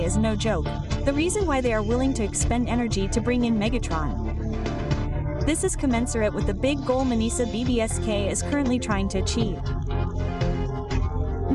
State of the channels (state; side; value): identical; both; correlation 1.00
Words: is no joke, the reason why they are willing to expend energy to bring in Megatron. This is commensurate with the big goal Manisa BBSK is currently trying to achieve.